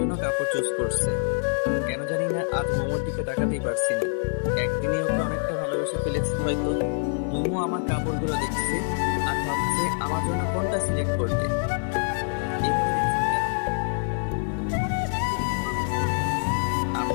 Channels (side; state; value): right; silent; digital silence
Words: কাপড় চুজ করছে। কেন জানি না আজ মোমোর দিকে তাকাতেই পারছি না। একদিনে ওকে অনেকটা ভালোবেসে ফেলেছি হয়তো। মোমো আমার কাপড়গুলো দেখছে আর ভাবছে আমার জন্য কোনটা সিলেক্ট করবে। এভাবে দেখছেন কেন? তোমাকে সিলেক্ট করবে তাই?